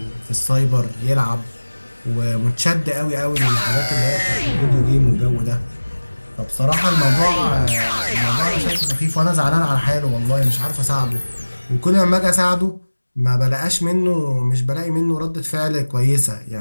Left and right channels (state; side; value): inverted; both; correlation -1.00